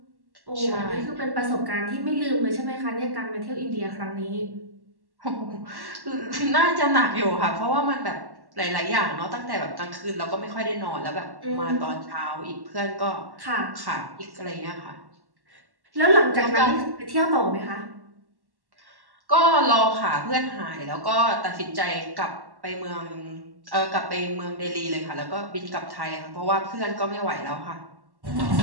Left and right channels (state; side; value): late; left; 1.1 ms